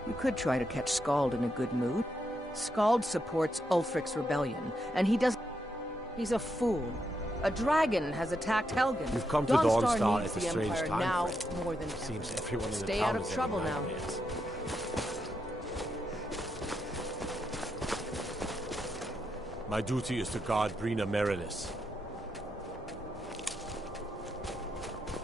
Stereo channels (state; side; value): normal; both; correlation 0.82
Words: you could try to catch Scald in a good mood. Scald supports Ulfric's rebellion, and he does... He's a fool. A dragon has attacked Helgen. You've come to Dawnstar Dawnstar needs at a the strange Empire time, now friend. more than ever. Seems everyone in the Stay town out of is trouble having now. nightmares. My duty is to guard Brina Merilis.